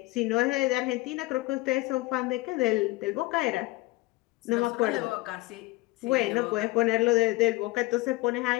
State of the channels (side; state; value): right; quieter; 20.6 dB